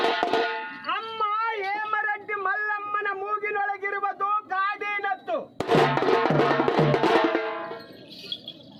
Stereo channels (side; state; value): both; identical; correlation 1.00